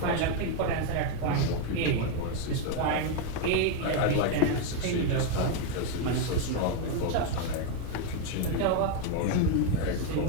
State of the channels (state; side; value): different; both; correlation 0.01